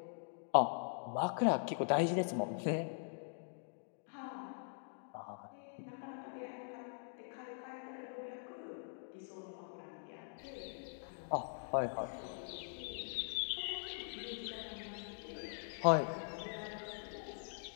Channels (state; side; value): silent; right; digital silence